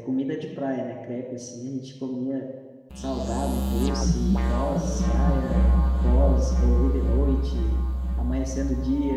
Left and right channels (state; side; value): identical; both; correlation 1.00